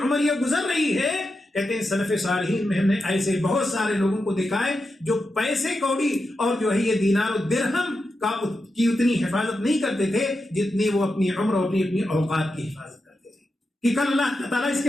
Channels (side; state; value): both; normal; correlation 0.88